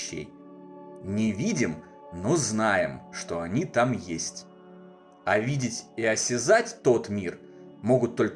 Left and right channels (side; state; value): both; identical; correlation 1.00